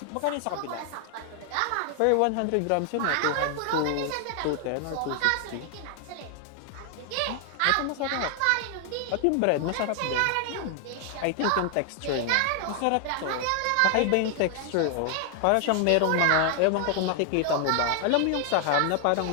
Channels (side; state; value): both; different; correlation 0.00